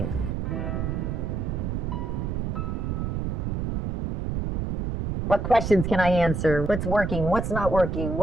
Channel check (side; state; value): right; noise; rumble, 1 dB below the sound